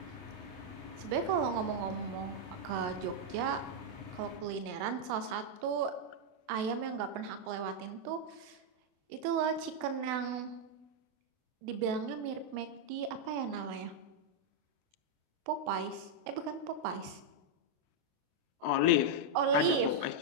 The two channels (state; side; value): late; left; 28 ms